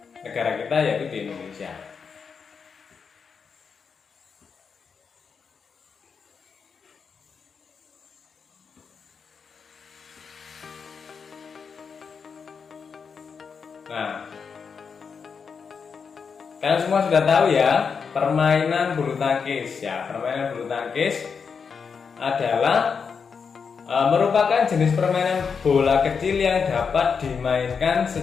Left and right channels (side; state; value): right; quieter; 5.9 dB